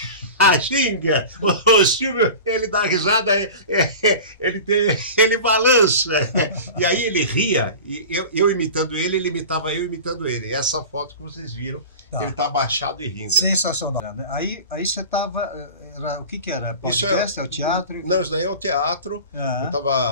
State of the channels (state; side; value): inverted; both; correlation -0.34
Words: ginga. O Silvio, ele dá risada, ele balança. E aí ele ria, e eu imitando ele imitava eu imitando ele. Essa foto que vocês viram, ele está abaixado e rindo. Sensacional. Aí você estava... O que era? Podcast? É o teatro? Não, isso daí é o teatro. Eu